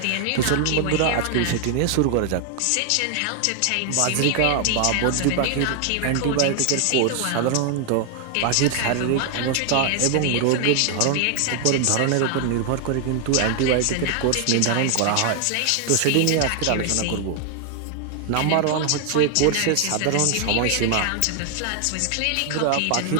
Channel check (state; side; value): different; both; correlation 0.00